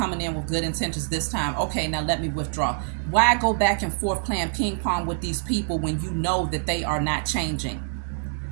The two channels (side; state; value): left; silent; digital silence